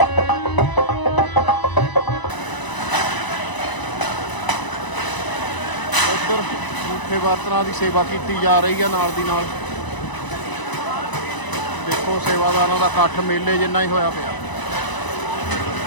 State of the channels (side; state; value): right; late; 1.0 ms